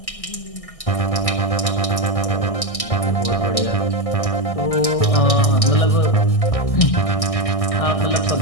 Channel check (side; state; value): right; late; 1.6 ms